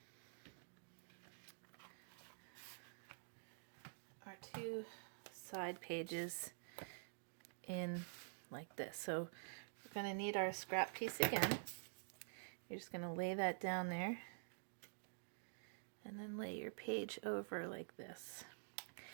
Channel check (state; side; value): silent; left; digital silence